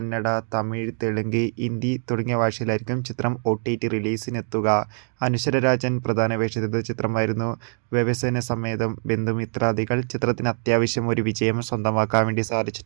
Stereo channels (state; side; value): silent; left; digital silence